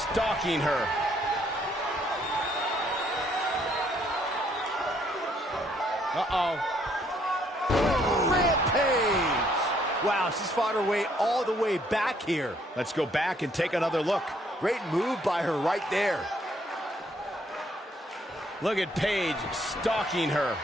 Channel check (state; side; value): normal; both; correlation 0.68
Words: her. Rampage! Wow, she's fought her way all the way back here. Let's go back and take another look. Great move by her right there. Look at Paige stalking her.